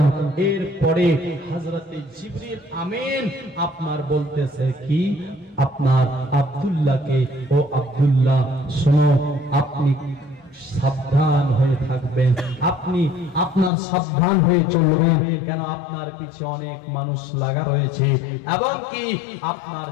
এরপরে হযরত জিবরিল আমিন আপনার বলতেছে কি, আপনার আব্দুল্লাহকে, ও আব্দুল্লাহ শোনো, আপনি সাবধান হয়ে থাকবেন, আপনি আপনার সাবধান হয়ে চলবেন, কেন আপনার পিছে অনেক মানুষ লাগা রয়েছে এবং কি আপনার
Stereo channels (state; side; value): drops out; right; at 13.7 s